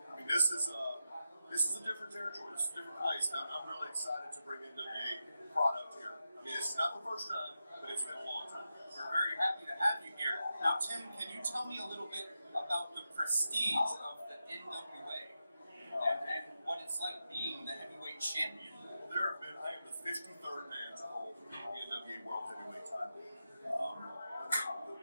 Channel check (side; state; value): both; inverted; correlation -0.89